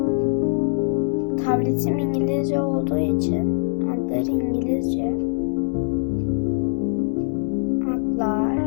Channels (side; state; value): right; silent; digital silence